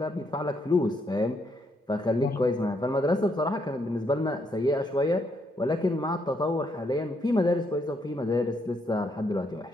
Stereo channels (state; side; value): normal; both; correlation 0.75